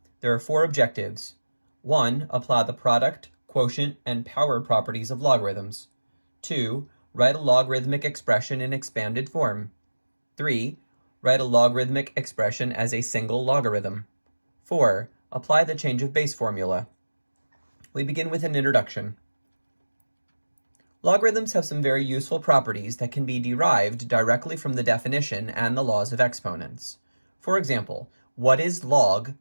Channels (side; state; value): both; inverted; correlation -1.00